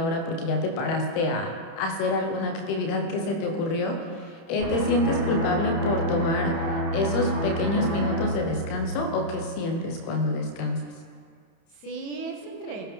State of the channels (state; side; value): late; right; 30 ms